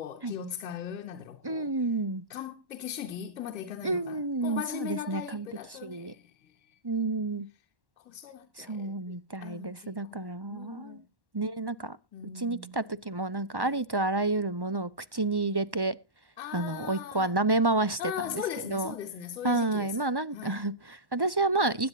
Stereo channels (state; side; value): late; left; 1.1 ms